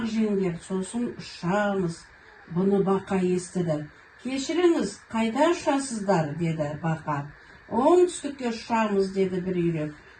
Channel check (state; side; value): identical; both; correlation 1.00